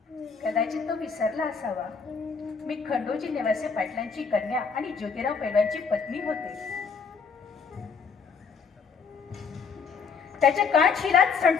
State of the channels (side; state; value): right; quieter; 5.5 dB